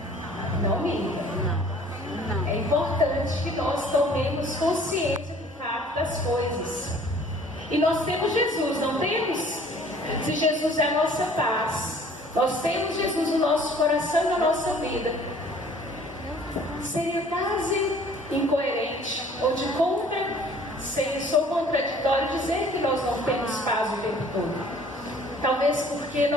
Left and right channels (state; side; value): normal; both; correlation 0.53